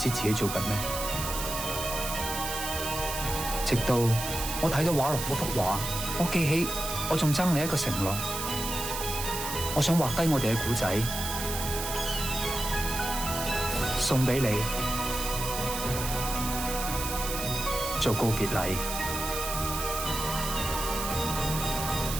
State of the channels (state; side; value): noise; right; hiss, 5 dB below the sound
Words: 自己做緊咩，直到我睇到畫廊嗰幅畫，我記起我仲爭你一個承諾，我想畫低我哋嘅故仔，送俾你做告別禮。